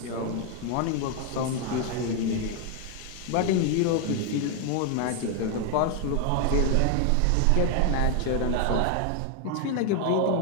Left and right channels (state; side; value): different; both; correlation 0.01